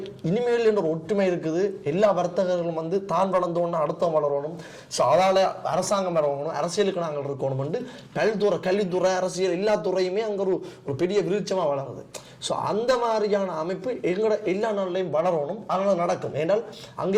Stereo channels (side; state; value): both; identical; correlation 1.00